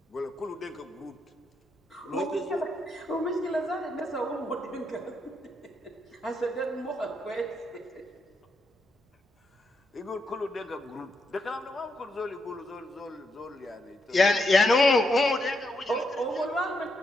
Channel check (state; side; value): normal; both; correlation 0.80